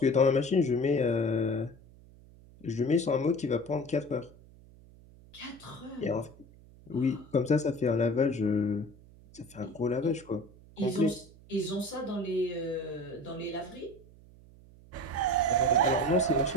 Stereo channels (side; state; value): right; noise; hum, 23 dB below the sound